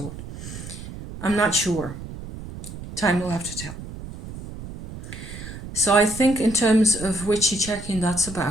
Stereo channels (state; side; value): noise; right; rumble, 11 dB below the sound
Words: I'm not sure. Time will have to tell. So I think in terms of witchy checking, that's